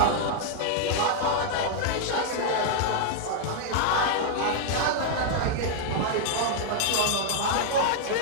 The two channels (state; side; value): different; both; correlation -0.01